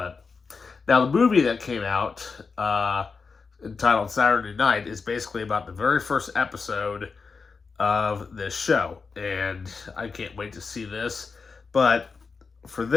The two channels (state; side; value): quieter; right; 4.9 dB